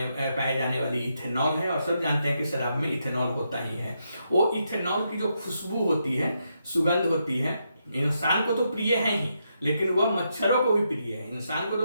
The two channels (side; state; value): both; inverted; correlation -0.81